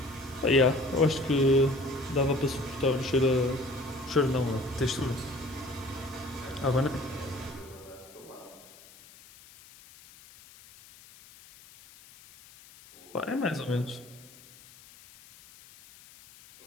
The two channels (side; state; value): left; noise; hiss, 22 dB below the sound